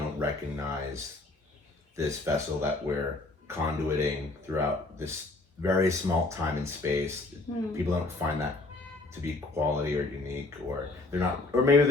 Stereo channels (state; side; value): quieter; right; 3.1 dB